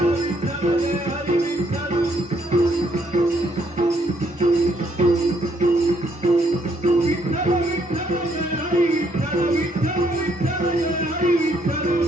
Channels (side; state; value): both; normal; correlation 0.70